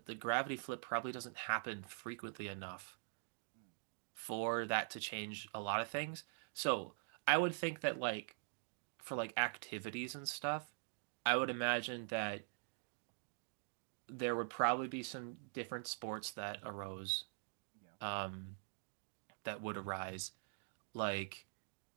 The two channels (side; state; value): left; silent; digital silence